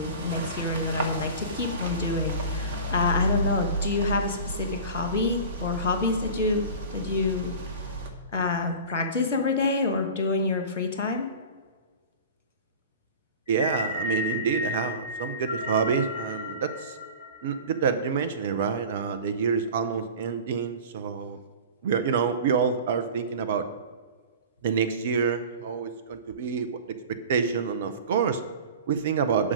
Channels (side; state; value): both; inverted; correlation -0.36